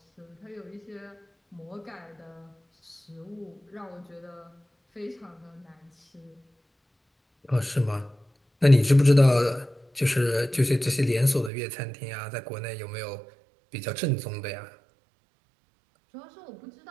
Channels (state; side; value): drops out; left; at 11.5 s